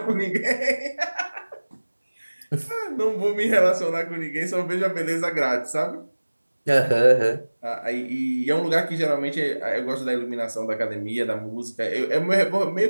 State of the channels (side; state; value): both; inverted; correlation -1.00